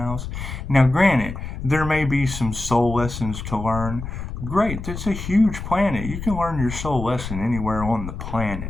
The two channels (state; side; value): noise; left; rumble, 7 dB below the sound